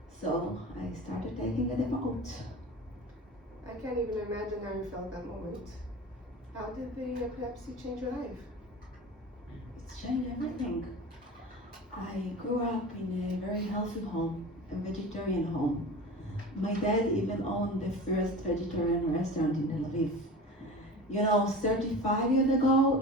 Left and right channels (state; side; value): normal; both; correlation 0.34